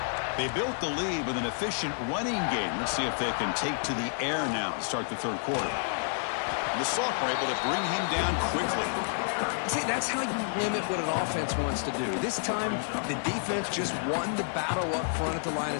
They built the lead with an efficient running game. Let's see if they can take to the air now to start the third quarter. And the sophomore able to bring him down quickly. See, that's how you limit what an offense wants to do. This time, the defense just won the battle up front at the line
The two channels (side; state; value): right; silent; 58 dB below the other